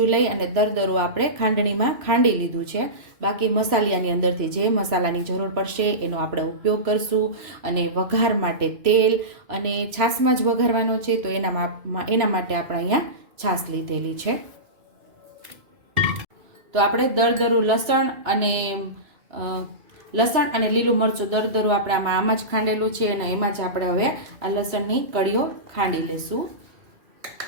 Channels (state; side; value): late; left; 3.0 ms